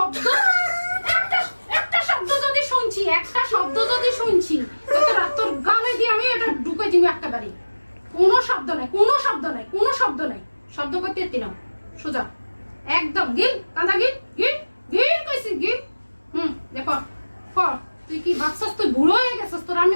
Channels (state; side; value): inverted; both; correlation -1.00